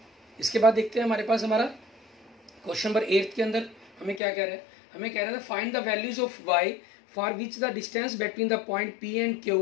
इसके बाद देखते हैं हमारे पास हमारा क्वेश्चन नंबर 8 के अंदर हमें क्या कह रहा है, हमें कह रहा था find the values of y for which the distance between the point P and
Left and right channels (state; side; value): drops out; right; at 4.2 s